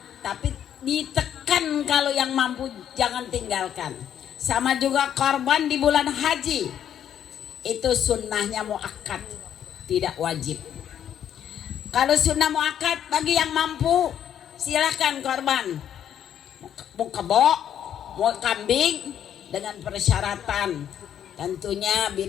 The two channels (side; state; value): right; quieter; 9.7 dB